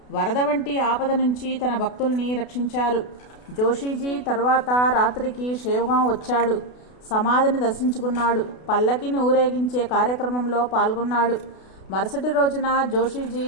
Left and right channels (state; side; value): late; right; 32 ms